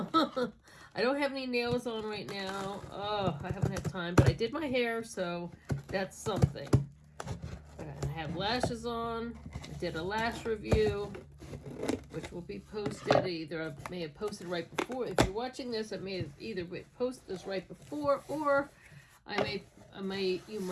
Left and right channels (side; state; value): both; identical; correlation 1.00